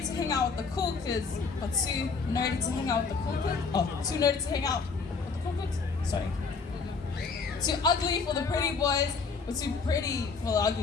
to hang out with the cool kids, but too nerdy to hang out with the cool kids. Oh, too nerdy to hang out with the cool kids? Sorry. Too ugly for the pretty boys, but too pretty for the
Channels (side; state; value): right; quieter; 4.9 dB